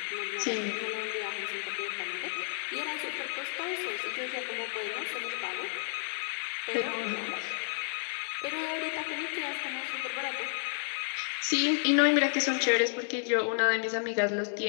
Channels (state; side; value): silent; right; digital silence